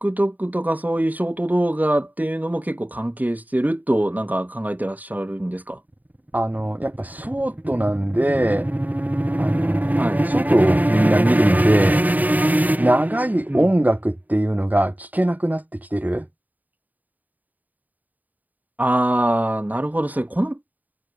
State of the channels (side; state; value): left; late; 0.080 ms